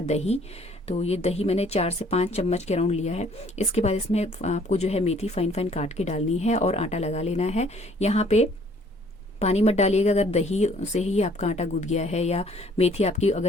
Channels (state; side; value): normal; both; correlation 0.59